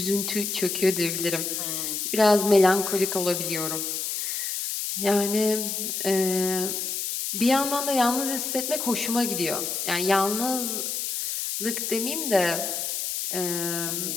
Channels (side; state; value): left; noise; hiss, 2 dB below the sound